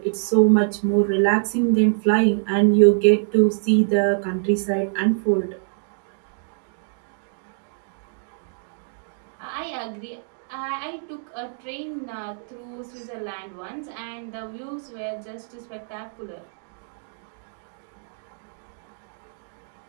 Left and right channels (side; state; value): left; silent; 61 dB below the other